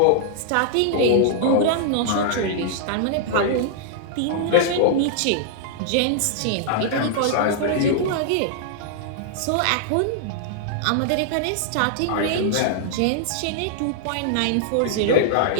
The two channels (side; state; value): both; different; correlation -0.01